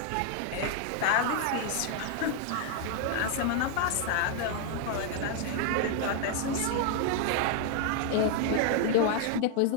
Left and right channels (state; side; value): different; both; correlation 0.00